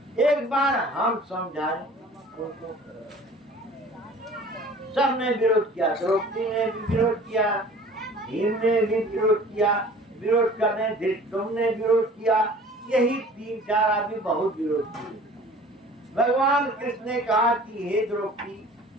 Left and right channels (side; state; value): both; normal; correlation 0.47